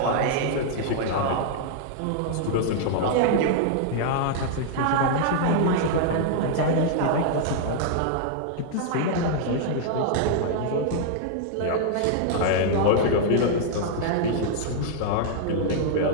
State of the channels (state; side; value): different; both; correlation -0.01